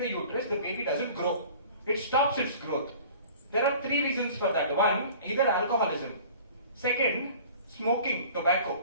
the uterus, the baby doesn't grow. It stops its growth. There are 3 reasons for that. 1, either alcoholism. 2nd, smoking,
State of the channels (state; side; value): inverted; both; correlation -0.45